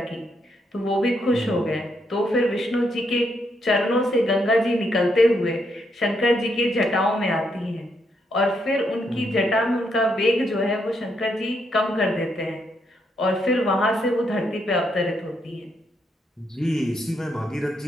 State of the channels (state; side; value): normal; both; correlation 0.77